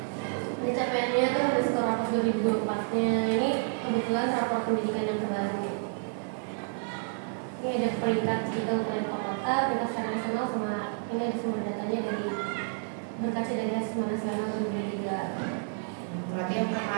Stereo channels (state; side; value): silent; left; 58 dB below the other